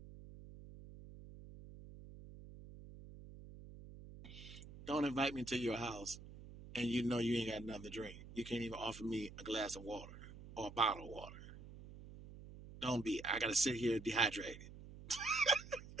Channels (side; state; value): right; noise; hum, 15 dB below the sound